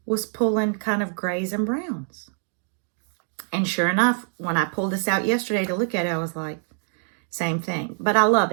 was pulling kind of grays and browns. And sure enough, when I pulled this out yesterday to look at it, I was like, same thing. But I love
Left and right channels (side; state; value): left; silent; 62 dB below the other